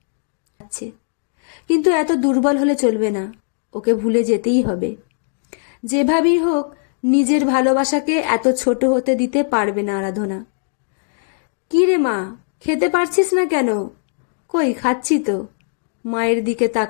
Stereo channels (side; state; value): right; silent; digital silence